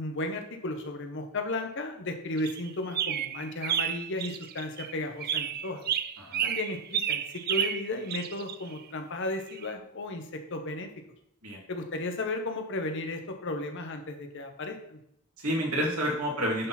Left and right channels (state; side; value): normal; both; correlation 0.09